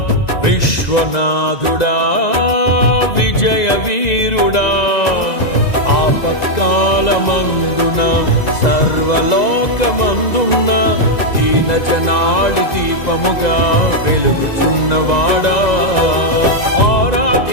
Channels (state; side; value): late; right; 2.0 ms